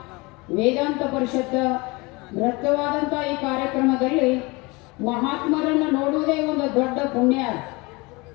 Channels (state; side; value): quieter; right; 25.2 dB